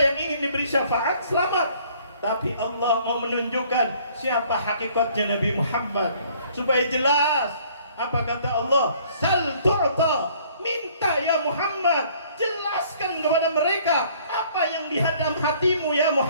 ingin diberi syafaat, selamat. Tapi Allah mau menunjukkan siapa hakikatnya Nabi Muhammad. Supaya jelas, apa kata Allah? Sal tu'ta. Minta ya Muhammad, jelaskan kepada mereka apa yang di dalam hatimu ya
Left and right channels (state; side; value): inverted; both; correlation -0.58